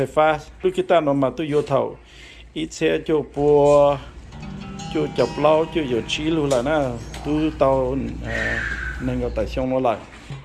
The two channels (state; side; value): identical; both; correlation 1.00